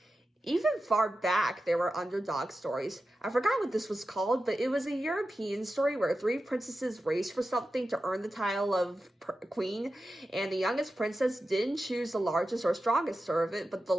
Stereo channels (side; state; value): both; normal; correlation 0.92